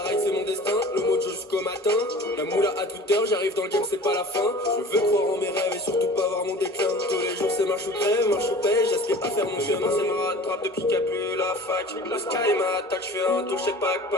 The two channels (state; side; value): normal; both; correlation 0.42